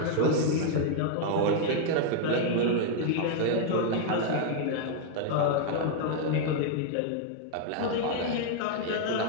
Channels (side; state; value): both; different; correlation 0.00